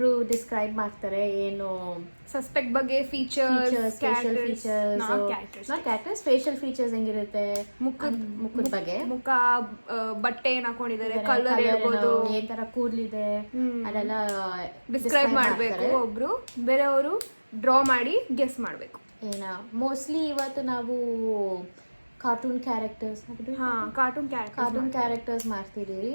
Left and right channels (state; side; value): inverted; both; correlation -1.00